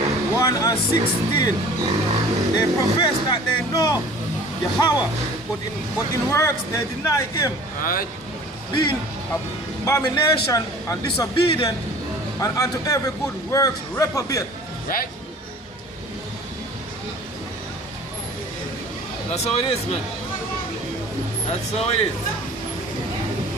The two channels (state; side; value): normal; both; correlation 0.46